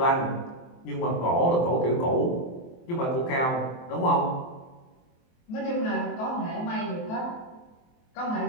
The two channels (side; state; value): right; late; 23 ms